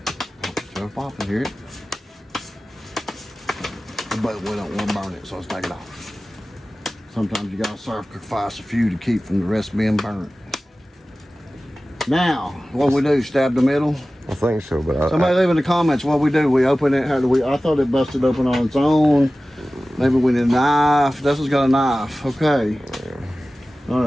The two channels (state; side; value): normal; both; correlation 0.96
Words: Still popping, hear it? But we don't want to burn it, so let's take it off. Sometimes you gotta sacrifice a few to keep from the rest being burnt. Now, what we do, stab the middle? I think so, but somebody leave in the comments what we do. We open it, how do we? I thought it busted open on its own. Maybe we need a knife. Dustin's got a knife. Okay. All